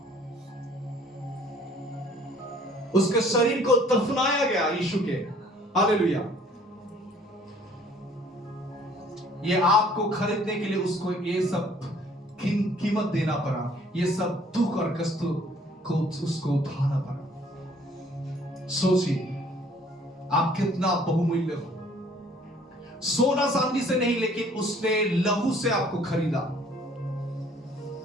उसके शरीर को दफनाया गया यीशु के। हालेलुया। ये आपको खरीदने के लिए उसको ये सब कीमत देना पड़ा, ये सब दुख और कष्ट को उसको उठाना पड़ा। सोचिए आप कितना बहुमूल्य हो। सोना चांदी से नहीं, लेकिन उसने लहू से आपको खरीदा।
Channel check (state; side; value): normal; both; correlation 0.57